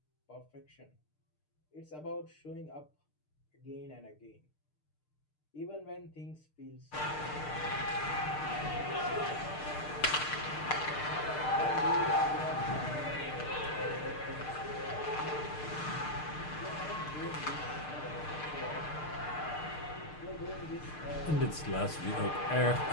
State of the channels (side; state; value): right; late; 6.6 ms